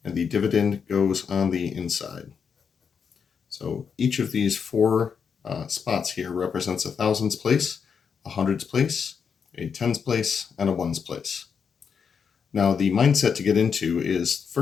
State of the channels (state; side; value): quieter; right; 6.5 dB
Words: and the dividend goes on the inside. So each of these four spots here represents a thousands place, a hundreds place, a tens place, and a ones place. Now the mindset to get into is, the